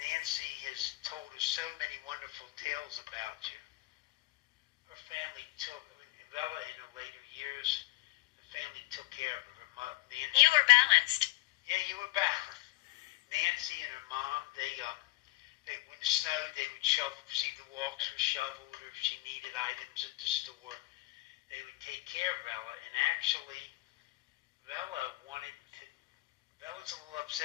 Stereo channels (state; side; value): quieter; right; 20.5 dB